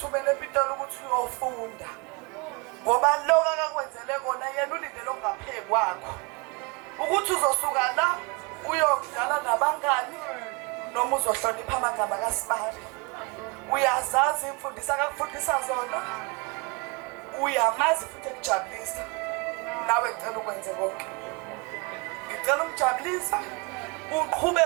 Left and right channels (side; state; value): left; quieter; 30.0 dB